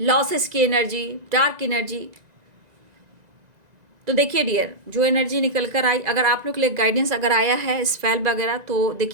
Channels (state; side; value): late; left; 2.0 ms